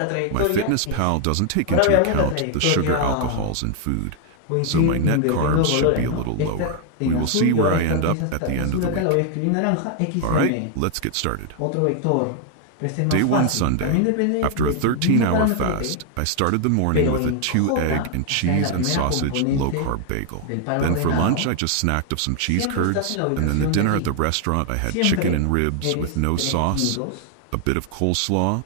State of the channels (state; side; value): different; both; correlation 0.00